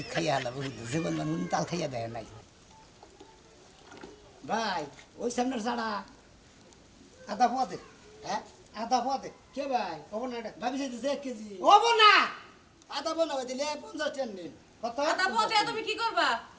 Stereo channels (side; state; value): both; identical; correlation 1.00